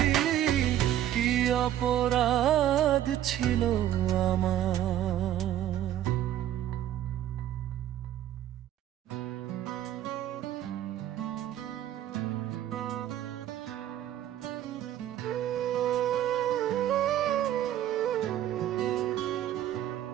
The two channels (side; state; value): left; quieter; 12.0 dB